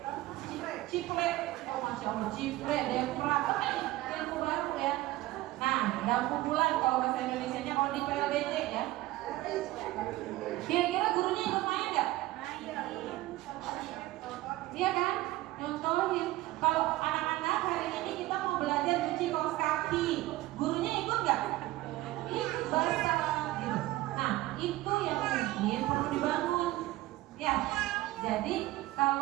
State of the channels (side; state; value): left; quieter; 17.4 dB